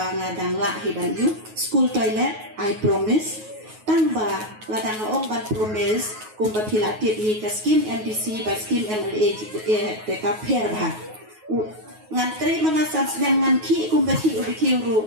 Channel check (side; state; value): left; late; 9.4 ms